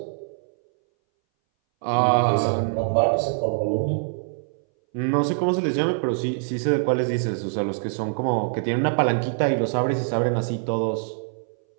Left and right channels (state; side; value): silent; left; 61 dB below the other